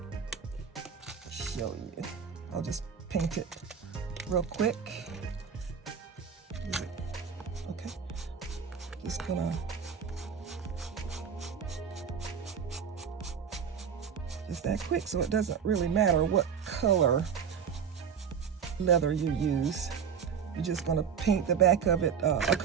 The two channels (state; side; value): quieter; left; 7.1 dB